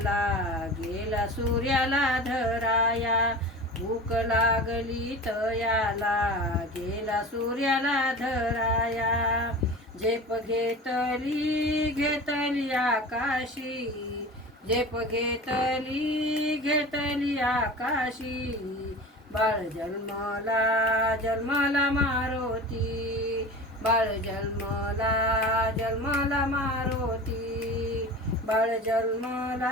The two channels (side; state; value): both; normal; correlation 0.34